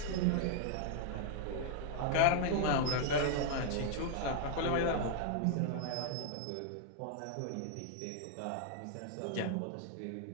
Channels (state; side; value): different; both; correlation 0.00